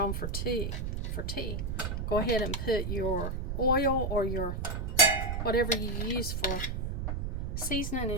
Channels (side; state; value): right; noise; rumble, 2 dB below the sound